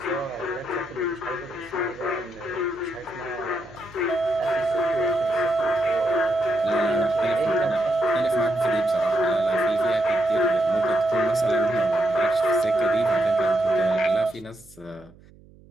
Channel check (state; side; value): noise; right; hum, 25 dB below the sound